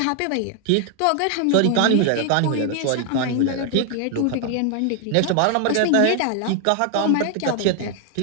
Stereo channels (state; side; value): different; both; correlation 0.00